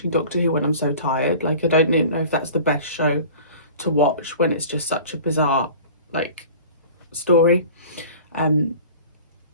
Doctor Who when I'm so tired. Like, I don't know if that's the best show to watch when it's just such a bizarre, like, story.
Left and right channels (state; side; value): inverted; both; correlation -0.42